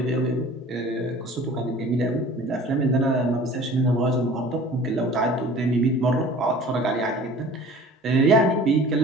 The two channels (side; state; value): both; normal; correlation 0.45